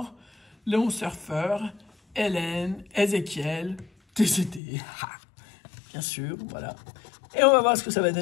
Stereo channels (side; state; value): right; drops out; at 4.6 s